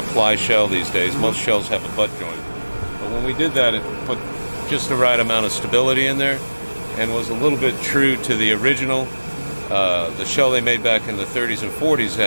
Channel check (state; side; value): inverted; both; correlation -1.00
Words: ply shell these days. Most shells have a butt joint. But when we did that, it put just the right amount of stability in there and was a little bit true to the original. The shell they made back in the 30s and 40s